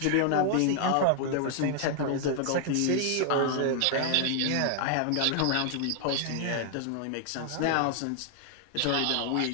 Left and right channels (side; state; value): both; different; correlation 0.00